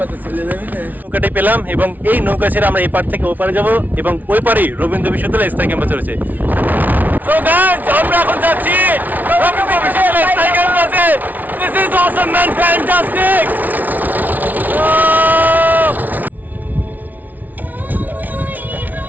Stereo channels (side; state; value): left; late; 0.080 ms